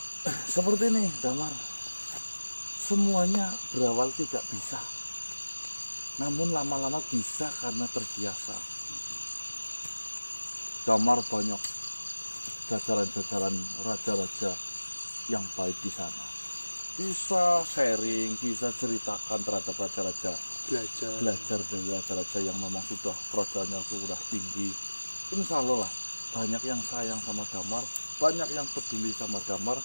Seperti ini, Damar. Semuanya berawal tidak bisa, namun lama-lama bisa karena terbiasa. Damar banyak jajaran-jajaran raja-raja yang baik di sana. Bisa sharing, bisa ceritakan terhadap raja-raja, belajar dari raja-raja yang memang sudah kerajaannya sudah tinggi. Insya Allah lah, banyak yang sayang sama Damar, banyak yang peduli sama Damar,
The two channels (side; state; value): both; inverted; correlation -1.00